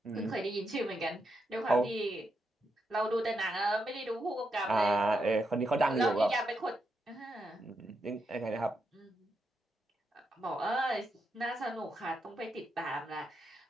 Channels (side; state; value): both; normal; correlation 0.83